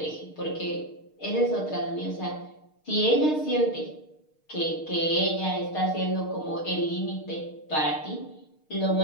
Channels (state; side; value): late; right; 6.5 ms